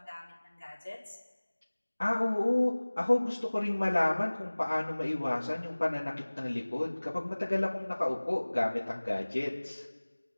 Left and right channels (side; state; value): both; inverted; correlation -1.00